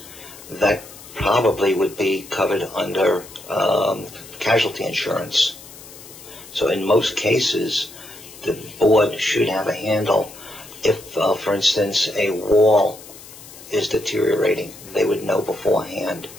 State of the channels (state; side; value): noise; left; hiss, 18 dB below the sound